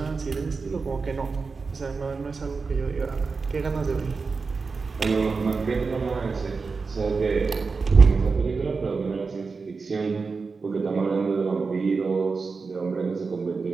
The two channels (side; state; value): left; quieter; 4.6 dB